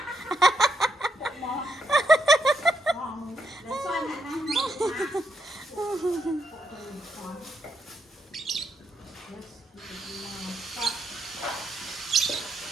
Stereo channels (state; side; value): normal; both; correlation 0.79